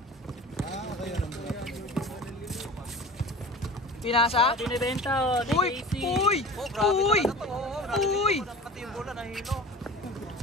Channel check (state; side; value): normal; both; correlation 0.37